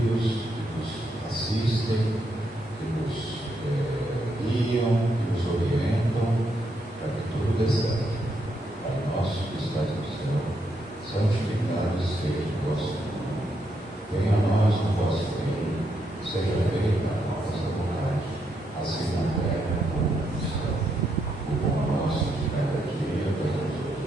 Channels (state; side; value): normal; both; correlation 0.79